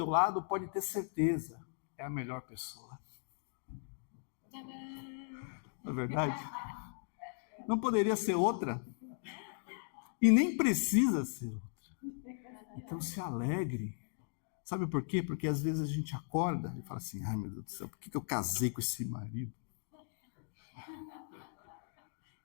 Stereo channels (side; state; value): right; silent; digital silence